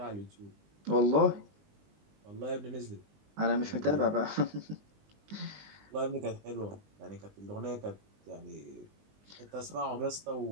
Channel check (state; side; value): late; left; 20 ms